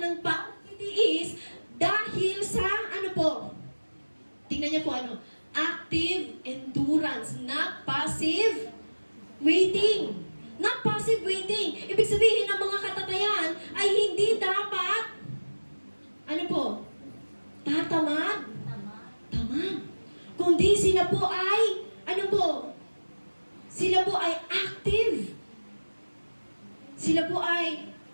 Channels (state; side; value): inverted; both; correlation -1.00